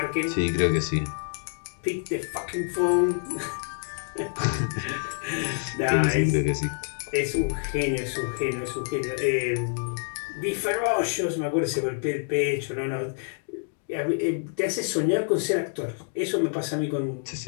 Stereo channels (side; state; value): right; silent; 60 dB below the other